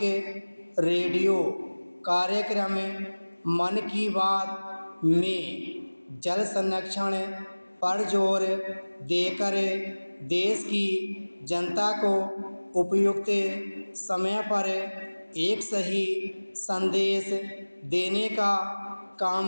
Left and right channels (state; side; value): inverted; both; correlation -1.00